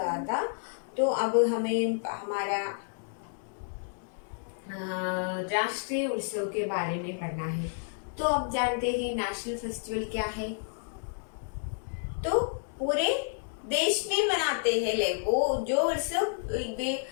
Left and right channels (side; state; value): right; silent; digital silence